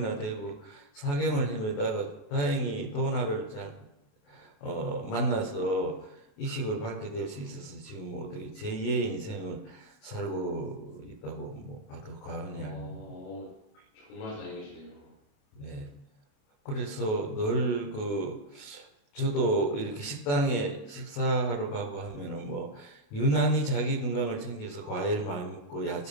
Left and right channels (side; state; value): right; late; 28 ms